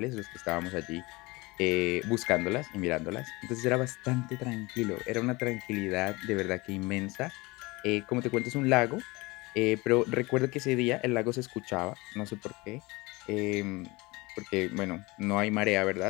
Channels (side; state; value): right; quieter; 23.6 dB